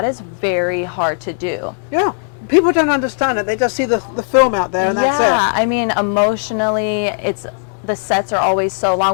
is very hard to do. Yeah. People don't understand it. They just see the film out there and that's it. Yeah, I mean, emotionally, the sets are always so long.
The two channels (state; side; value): silent; right; 68 dB below the other